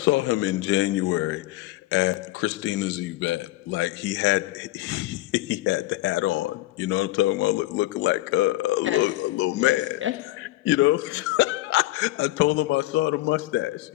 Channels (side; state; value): right; quieter; 17.5 dB